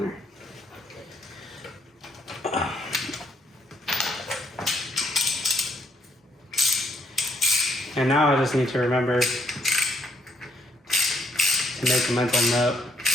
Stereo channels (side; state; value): both; normal; correlation 0.70